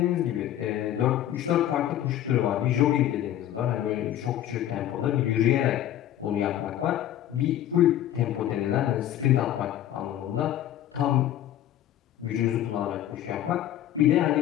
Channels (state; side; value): quieter; right; 12.0 dB